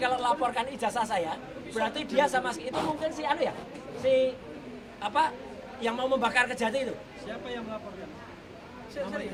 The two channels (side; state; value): both; identical; correlation 1.00